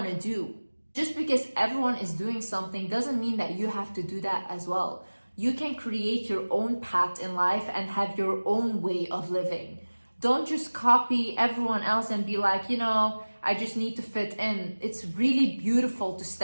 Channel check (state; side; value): inverted; both; correlation -1.00